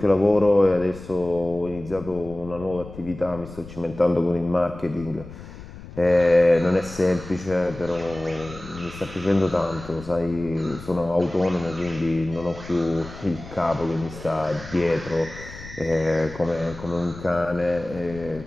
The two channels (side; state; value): left; noise; rumble, 15 dB below the sound